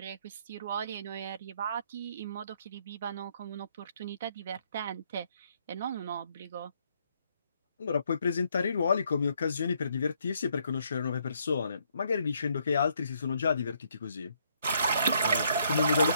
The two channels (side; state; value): both; inverted; correlation -0.71